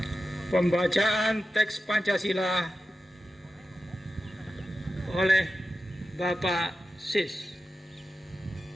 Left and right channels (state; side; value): normal; both; correlation 0.92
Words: Pembacaan teks Pancasila oleh Bapak Sis.